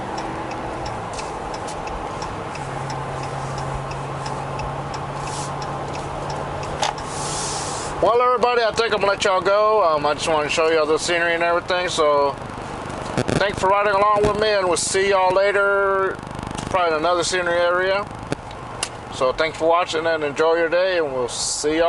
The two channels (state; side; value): identical; both; correlation 1.00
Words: Well, everybody, I think I'm gonna let y'all go. I just want to show y'all the scenery and everything. So, thanks for riding along with me, and we'll see y'all later, probably in another scenery area. So, thanks for watching and enjoy your day, and we'll see